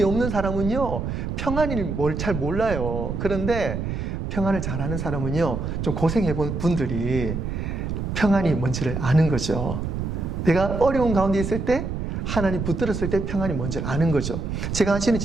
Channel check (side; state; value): right; noise; rumble, 3 dB below the sound